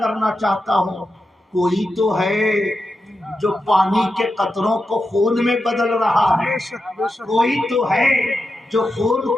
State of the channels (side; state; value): both; normal; correlation 0.89